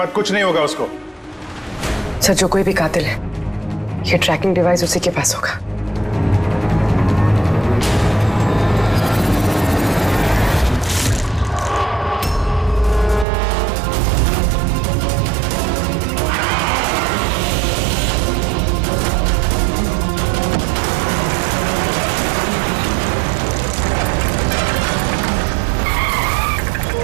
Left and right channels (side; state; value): left; drops out; at 13.2 s